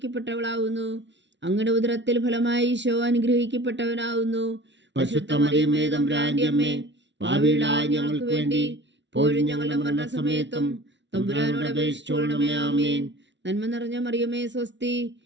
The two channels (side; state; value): left; late; 0.52 ms